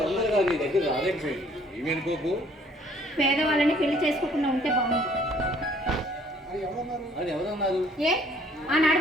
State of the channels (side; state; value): both; normal; correlation 0.60